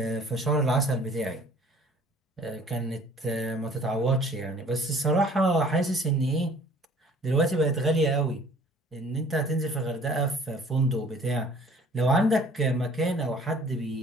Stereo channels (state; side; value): normal; both; correlation 0.53